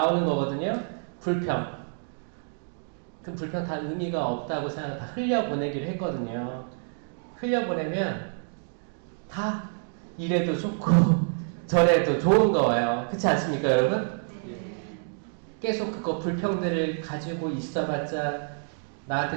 거거든요. 불평. 그 불평 다 의미가 없다고 생각, 다 흘려보내기를 했거든요. 흘려보내면 다 이래도 좋고 저래도 좋은 거예요. 그렇지 않습니까, 여러분? 계속 그거 불평들을 가지고 있어봤자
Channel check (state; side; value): silent; left; 60 dB below the other